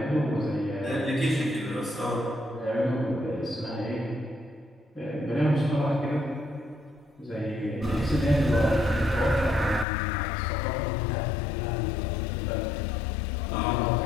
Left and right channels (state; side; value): drops out; right; at 9.9 s